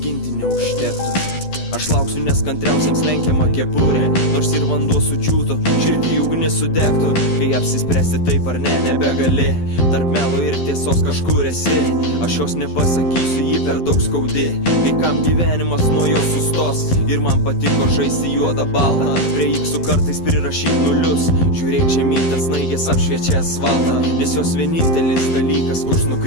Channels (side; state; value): right; late; 12 ms